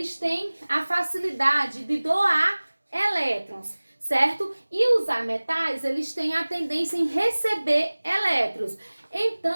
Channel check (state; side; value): inverted; both; correlation -1.00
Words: têm a facilidade de doar elétrons, certo? E os ametais, eles têm a tendência em receber elétrons.